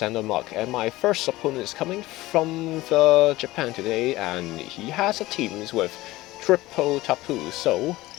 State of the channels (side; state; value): right; quieter; 18.2 dB